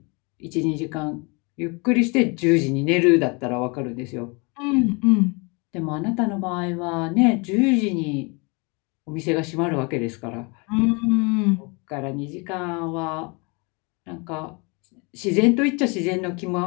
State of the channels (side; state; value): right; quieter; 30.3 dB